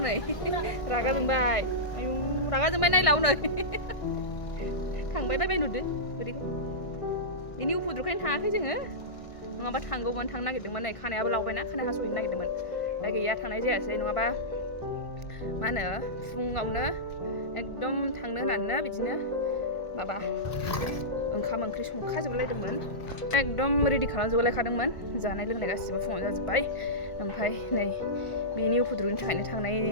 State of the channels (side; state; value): right; late; 1.5 ms